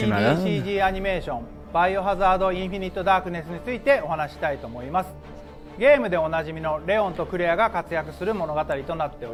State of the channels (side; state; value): both; identical; correlation 1.00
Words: アニメーションバイオハザードインフィニットダークネスについてお話したいと思います。ゲームでおなじみのレオンとクレアが活躍する物語となってお